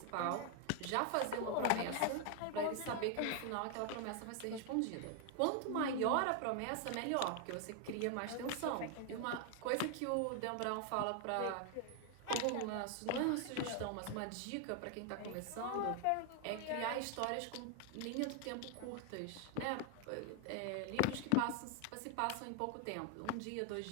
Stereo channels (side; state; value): both; different; correlation 0.00